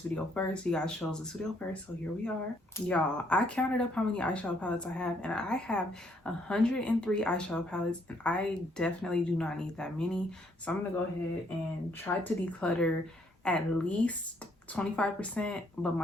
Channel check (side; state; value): both; normal; correlation 0.69